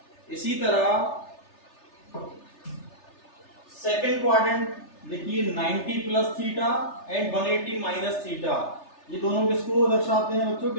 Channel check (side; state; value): right; late; 3.3 ms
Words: इसी तरह सेकंड क्वाड्रेंट देखिए 90 plus theta and 180 minus theta. ये दोनों किसको दर्शाते हैं बच्चों,